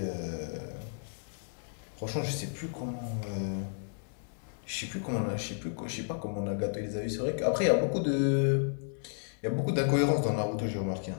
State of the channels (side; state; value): right; silent; digital silence